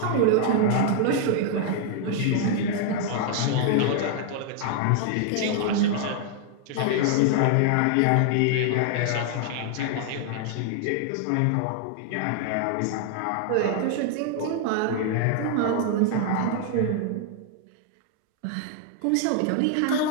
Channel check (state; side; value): different; both; correlation 0.00